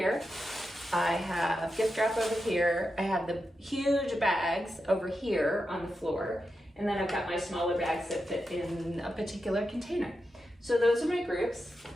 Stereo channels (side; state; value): both; normal; correlation 0.88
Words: I have gift wrap over here. I have the huge bags over here on the floor. And then I've got my smaller bags that fit in a particular container. So those are my groups.